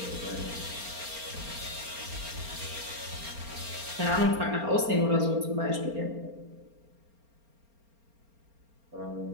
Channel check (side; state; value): left; late; 4.3 ms